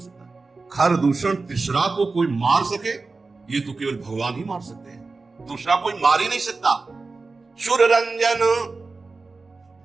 सकता है? खरदूषण तिसरा को कोई मार सके, ये तो केवल भगवान ही मार सकते हैं, दूसरा कोई मार ही नहीं सकता। सुर रंजन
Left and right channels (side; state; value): left; quieter; 3.9 dB